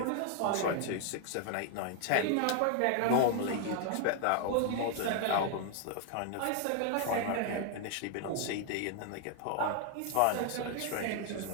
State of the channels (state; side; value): different; both; correlation 0.00